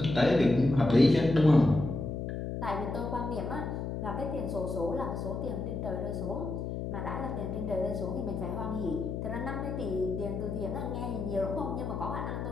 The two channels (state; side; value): noise; left; hum, 4 dB below the sound